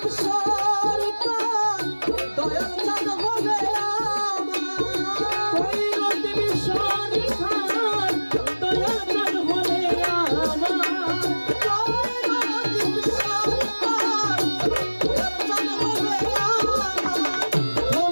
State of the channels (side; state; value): both; inverted; correlation -1.00